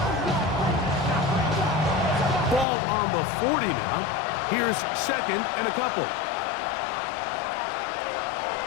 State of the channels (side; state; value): right; drops out; at 2.7 s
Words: Ball on the 40 now. Here's 2nd and a couple.